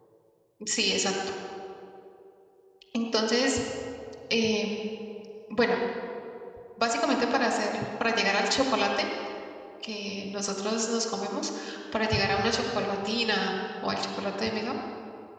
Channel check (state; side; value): identical; both; correlation 1.00